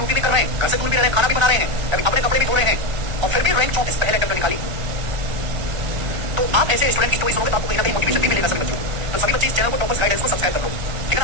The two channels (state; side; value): late; left; 1.4 ms